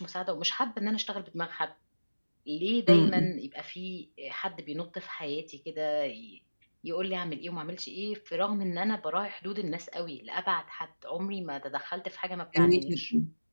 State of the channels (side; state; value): both; inverted; correlation -1.00